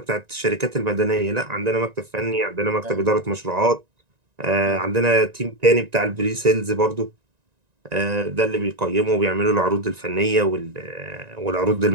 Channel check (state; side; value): late; left; 1.9 ms